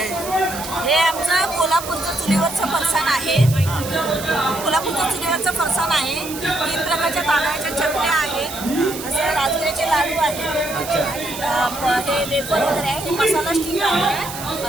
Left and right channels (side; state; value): right; noise; hiss, 10 dB below the sound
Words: हे आमचं कोल्हापूरचं चुलीवरचं फरसाण आहे. कोल्हापूरचं चुलीवरचं फरसाण आहे. 3 प्रकारच्या तांदळाच्या चटण्या आहेत. असे राजगिऱ्याचे लाडू आहेत. हे वेफर वगैरे आहे. हे मसाला स्टिक आहे